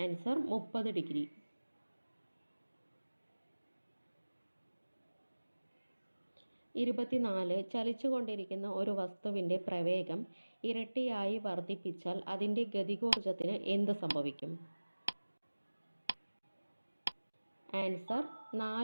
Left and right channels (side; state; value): both; inverted; correlation -1.00